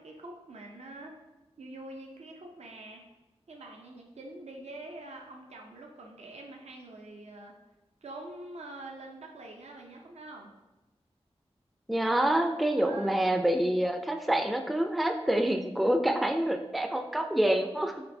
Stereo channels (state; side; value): normal; both; correlation 0.92